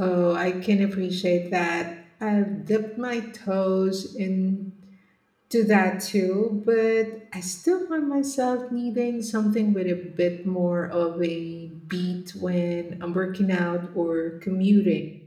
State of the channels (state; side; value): identical; both; correlation 1.00